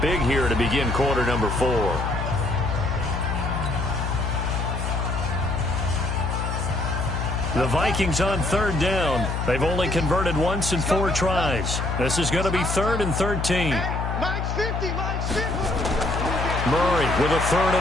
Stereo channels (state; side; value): noise; left; hum, 2 dB below the sound